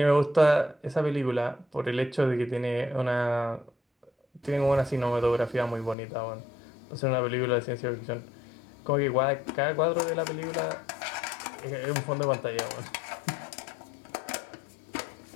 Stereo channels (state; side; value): drops out; right; at 6.0 s